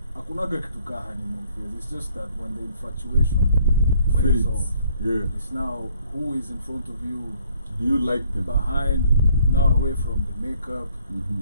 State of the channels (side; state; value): both; inverted; correlation -0.63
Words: Hakunaga kitu ka honeymoon phase. It's just that when the infatuation wears off, it's now who is in front of you. Do you like them? Behind, now away from the makeup,